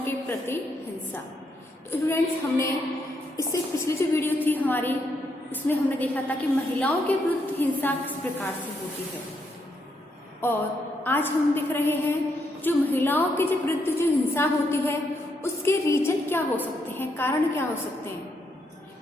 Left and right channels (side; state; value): both; normal; correlation 0.78